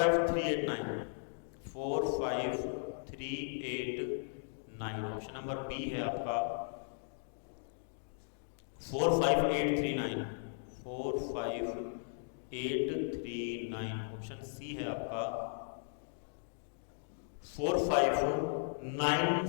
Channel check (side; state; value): right; silent; digital silence